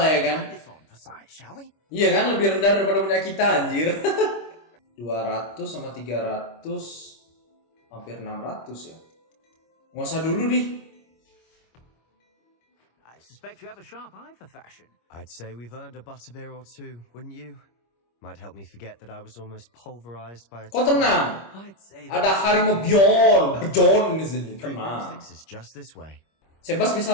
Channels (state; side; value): late; right; 25 ms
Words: lah ya kan? This on for size, shall we? Iya kan, lebih rendah daripada punya kita anjir. 200 sama 300 hampir 600 ya. Nggak usah dulu di. I suspect you have a sharp eye for fashion. I'd say we've earned a butterbeer or two, wouldn't you? Might help me forget that I was almost pulverized by a... Kok tenang? I'd say Ada Harimo Bjorn di sini. Tenang. is just this way. Sebas bisa